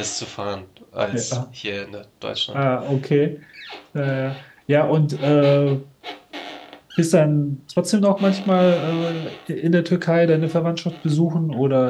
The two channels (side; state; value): both; identical; correlation 1.00